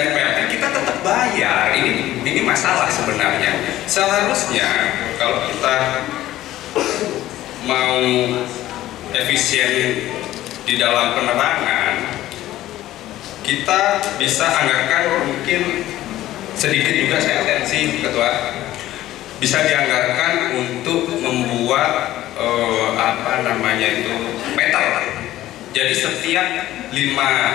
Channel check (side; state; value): right; quieter; 14.6 dB